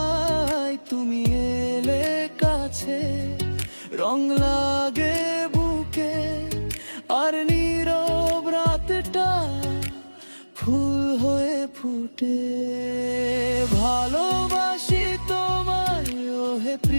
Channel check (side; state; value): both; inverted; correlation -1.00